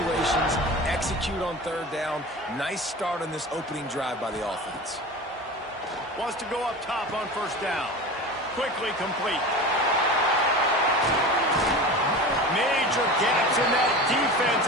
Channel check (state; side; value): normal; both; correlation 0.32